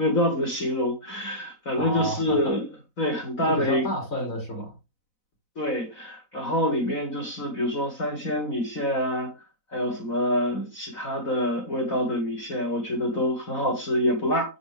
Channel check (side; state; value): right; late; 4.0 ms